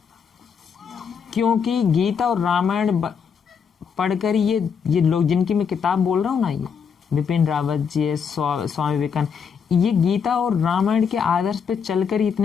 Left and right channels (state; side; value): quieter; right; 6.6 dB